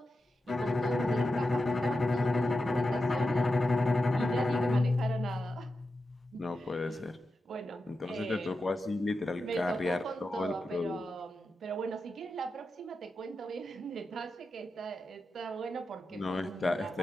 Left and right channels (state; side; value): normal; both; correlation 0.90